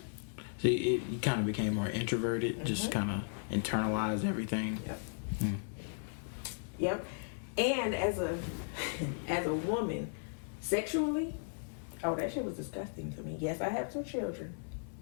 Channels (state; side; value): silent; right; digital silence